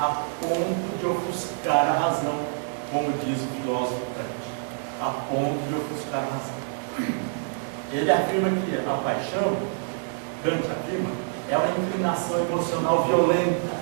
ponto de ofuscar a razão, como diz o filósofo Kant, a ponto de ofuscar a razão. Ele afirma que a paixão, Kant afirma, é uma inclinação emocional violenta,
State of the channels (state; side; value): silent; left; digital silence